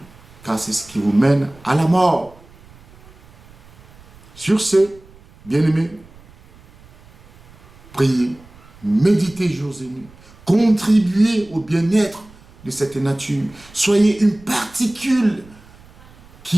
car c'est ce qui vous mène à la mort. Sur ce, bien-aimés, priez, méditez jours et nuits, contribuez au bien-être de cette nature. Soyez une particule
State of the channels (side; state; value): right; noise; rumble, 25 dB below the sound